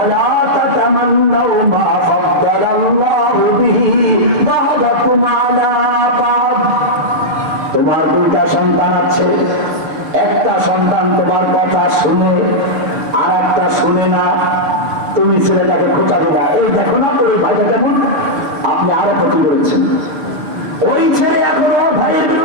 তাতামান্নাউ মা ফাদ্দালাল্লাহু বিহি বা'দাকুম আলা বা'দ। তোমার 2টা সন্তান আছে, একটা সন্তান তোমার কথা শুনে আর একটা শুনে না। তুমি ছেলেটাকে খোঁচা দিলা, এই দেখো না ওই ভাইটা কেমন, আপনি আরো ক্ষতি করেছেন। ওই ছেলে এখন ওর ভাইয়ের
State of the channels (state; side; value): late; left; 6.7 ms